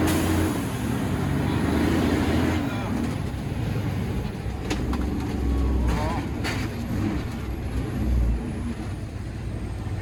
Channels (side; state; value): both; identical; correlation 1.00